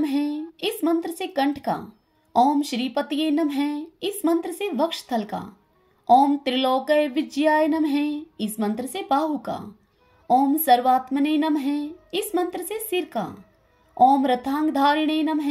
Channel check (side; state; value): both; identical; correlation 1.00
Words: इस मंत्र से कंठ का, ओम श्रीपतिये नमः इस मंत्र से वक्षस्थल का, ओम त्रिलोकय विजयाय नमः इस मंत्र से बाहु का, ओम सर्वात्मने नमः इस मंत्र से सिर का, ओम रथांगधारिणे नमः